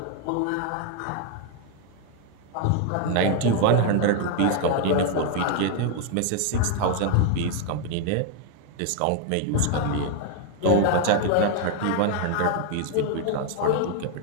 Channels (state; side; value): different; both; correlation 0.00